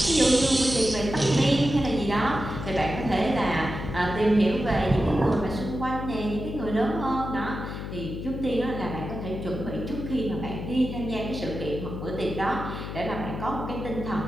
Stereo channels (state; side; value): noise; left; hum, 7 dB below the sound